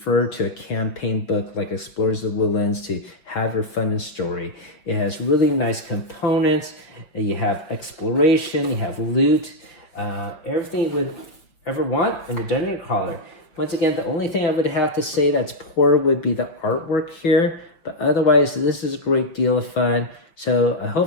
to a campaign book like Explorers of the Woodlands to have your fun and story. It has really nice components. You have exploration, you have loot, everything you would ever want in a dungeon crawler. Once again, the only thing I would have to say that's poor would be the artwork here, but otherwise this is a great deal of fun. So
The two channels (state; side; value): late; right; 6.0 ms